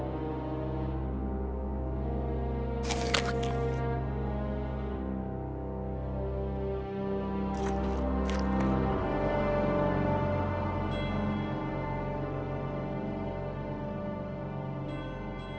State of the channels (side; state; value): both; identical; correlation 1.00